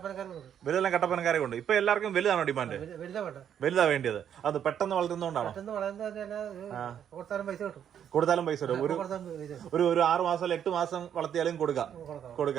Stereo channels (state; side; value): quieter; left; 9.1 dB